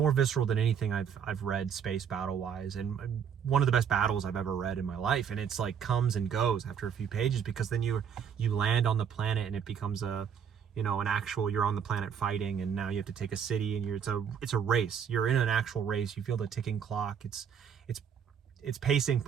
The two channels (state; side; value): quieter; left; 7.7 dB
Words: visceral than anything I've read space battle wise, and one of the best battles I've ever read in my life. And it's like comes and goes after a few pages, because then you land on the planet and it becomes an actual, you're on the planet fighting, and now you have to take a city, and it's a race. You're in an actual race. You feel the ticking clock. It's pacing